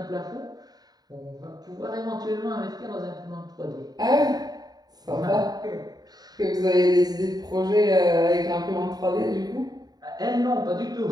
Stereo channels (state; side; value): late; left; 0.19 ms